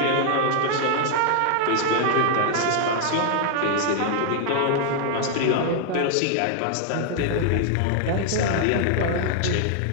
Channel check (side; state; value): both; different; correlation 0.00